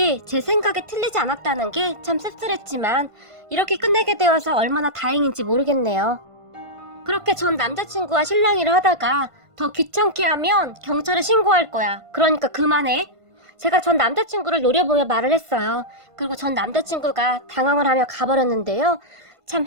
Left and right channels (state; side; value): late; left; 1.5 ms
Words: 제 생각에 틀리지 않았다는 게 참 씁쓸했지만 이렇게 끝내게 되어서 얼마나 다행인지 모르겠네요. 그렇게 전 남자친구와 실랑이를 하다가 더 귀찮게 하면 경찰에 신고할 거야. 그러니까 그만해. 제가 전 남자친구를 노려보며 말을 했어요. 그리고 전 남자친구가 당황을 하며 가버렸는데요. 참